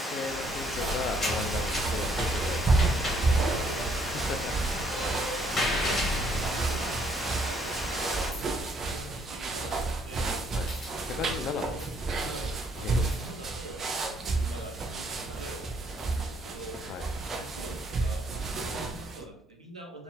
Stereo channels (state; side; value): normal; both; correlation 0.68